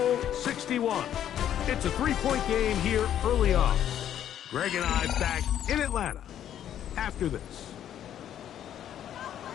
61. It's a 3-point game here early on. Greg and I back in Atlanta after this.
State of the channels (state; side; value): quieter; right; 10.5 dB